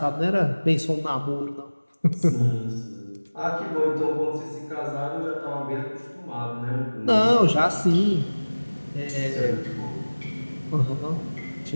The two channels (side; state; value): both; inverted; correlation -1.00